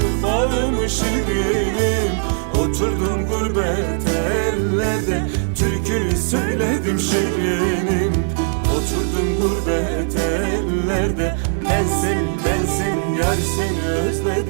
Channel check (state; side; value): silent; left; digital silence